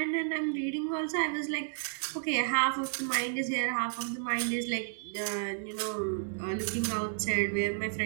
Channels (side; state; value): left; silent; digital silence